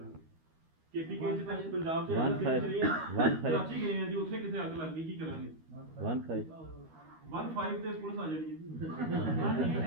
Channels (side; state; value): left; late; 13 ms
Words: केपी के पंजाब से कराची गए हैं जी, उसे किसे आग लग गई, की करांगे? 15 ਤੇ ਪੁਲਿਸ ਆ ਜਾਣੀ ਹੈ ਜੀ। 16